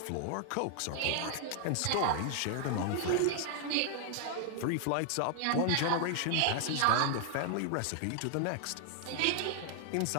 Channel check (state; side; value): different; both; correlation 0.00